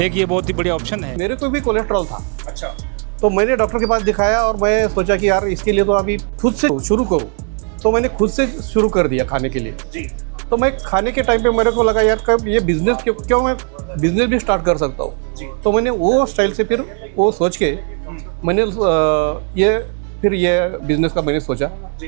एक ये बहुत ही बढ़िया ऑप्शन है। मेरे को भी कोलेस्ट्रॉल था। अच्छा, तो मैंने डॉक्टर के पास दिखाया और मैं सोचा कि यार इसके लिए तो अभी खुद से शुरू करूँ, तो मैंने खुद से शुरू कर दिया खाने के लिए जी। तो मैं खाने के टाइम पे मेरे को लगा यार कब ये बिजनेस क्यों मैं बिजनेस भी स्टार्ट कर सकता हूँ। तो मैंने वो स्टाइल से फिर वो सोच के मैंने ये बिजनेस का मैंने सोचा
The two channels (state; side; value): quieter; left; 39.3 dB